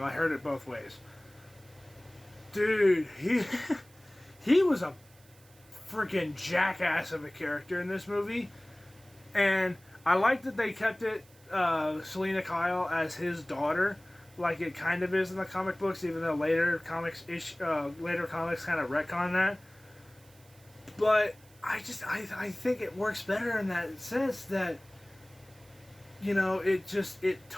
I heard it both ways. Dude, he was a freaking jackass of a character in this movie. And I like that they kept it Selena Kyle as his daughter, like it kind of is in the comic books, even though later comics kind of retcon that. But I think it works better in that sense that, you know, it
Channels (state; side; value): noise; right; hiss, 27 dB below the sound